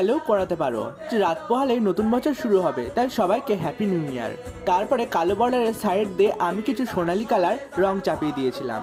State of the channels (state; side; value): identical; both; correlation 1.00